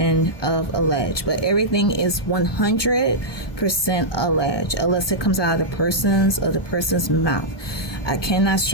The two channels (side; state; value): right; late; 1.2 ms